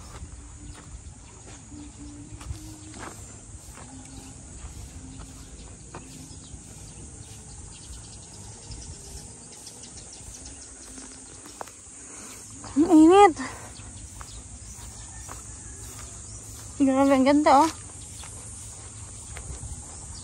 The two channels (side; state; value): both; identical; correlation 1.00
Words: Ang init. Grabe, ang ganda, oh.